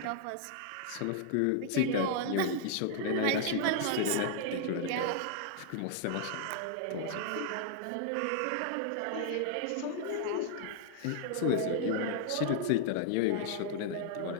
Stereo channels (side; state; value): both; different; correlation -0.01